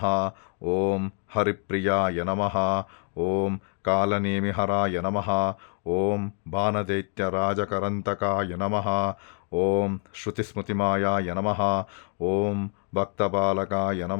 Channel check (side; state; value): right; quieter; 37.5 dB